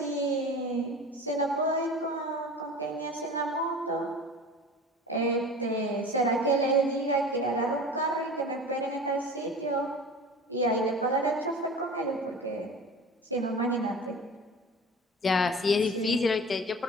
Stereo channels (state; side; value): normal; both; correlation 0.37